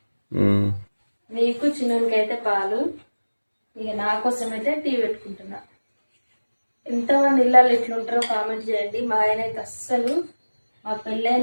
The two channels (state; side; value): inverted; both; correlation -1.00